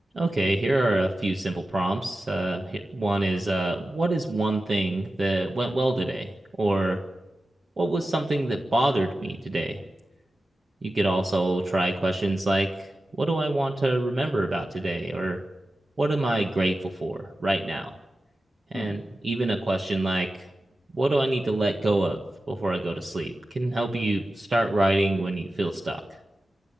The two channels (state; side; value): normal; both; correlation 0.94